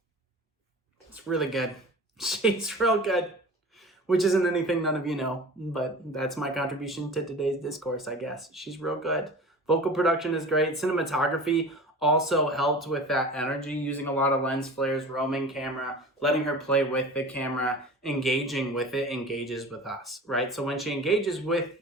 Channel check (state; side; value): normal; both; correlation 0.37